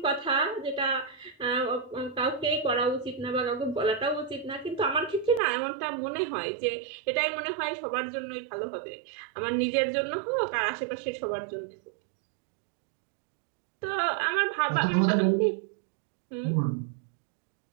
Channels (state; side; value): drops out; left; at 5.4 s